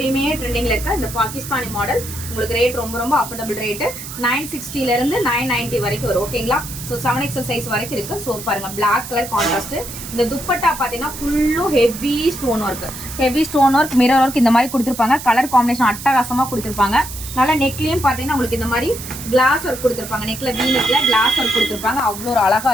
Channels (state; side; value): noise; right; hiss, 11 dB below the sound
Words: ட்ரெண்டிங்கில் இருக்க இந்த பாகிஸ்தானி மாடல். உங்களுக்கு ரேட் ரொம்ப அஃபோர்டபுள் ரேட்டு. 960 990 வரைக்கும் வரும். ஓகேங்களா? ஸோ 7XL சைஸ் வரைக்கும் இருக்குது. ஸோ பாருங்கள் பிளாக் கலர் கான்ட்ராஸ்ட்டு. இந்த துப்பட்டா பார்த்தீங்கன்னா ஃபுல்லும் heavy stone work mirror work இந்த மாதிரி கொடுத்துருப்பாங்க. கலர் காம்பினேஷன் அட்டகாசமாக கொடுத்துருப்பாங்க. நல்லா நெக்லேயும் பார்த்தீங்கன்னா உங்களுக்கு இந்த மாதிரி கிளாஸ் ஒர்க் கொடுத்துருப்பாங்க. நெக்கில் வீனெக்கில் கிளாஸ் ஒர்க் கொடுத்துருப்பாங்க. அவ்வளோ ஒரு அழகாக